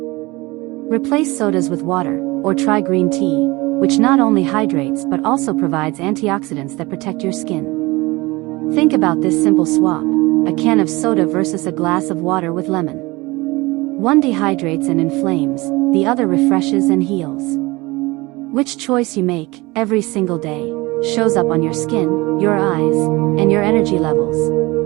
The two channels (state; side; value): quieter; left; 22.4 dB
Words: Replace sodas with water, or try green tea, which not only hydrates but also provides antioxidants that protect your skin. Think about this simple swap: a can of soda versus a glass of water with lemon. One dehydrates and inflames, the other refreshes and heals. Which choice you make, every single day, shows up on your skin, your eyes, and your energy levels.